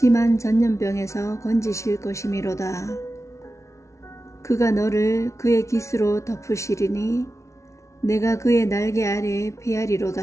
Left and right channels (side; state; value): right; late; 0.14 ms